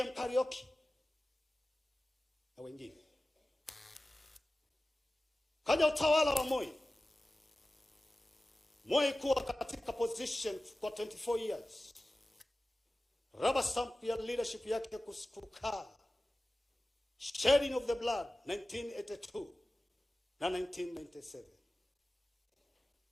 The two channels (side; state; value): both; normal; correlation 0.96